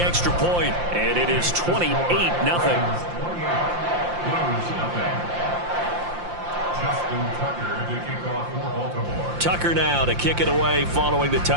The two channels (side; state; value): left; late; 5.7 ms